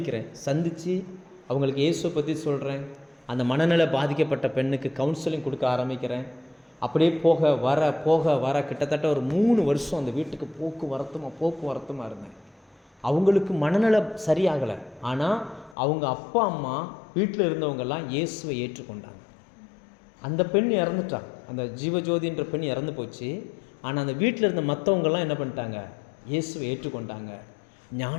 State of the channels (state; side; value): drops out; right; at 15.8 s